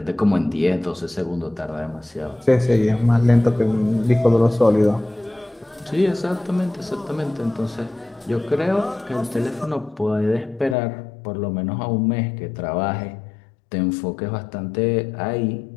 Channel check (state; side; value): drops out; right; at 10.8 s